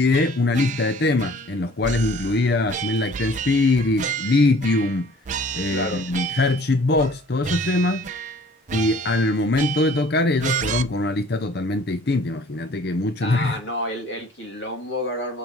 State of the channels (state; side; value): normal; both; correlation 0.53